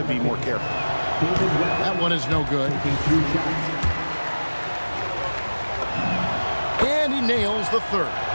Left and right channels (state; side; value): inverted; both; correlation -1.00